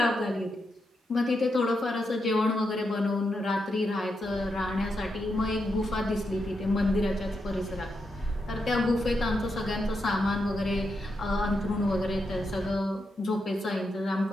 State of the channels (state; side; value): normal; both; correlation 0.84